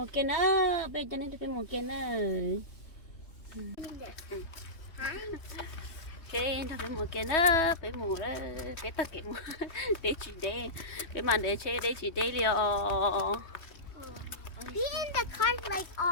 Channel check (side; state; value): right; late; 3.2 ms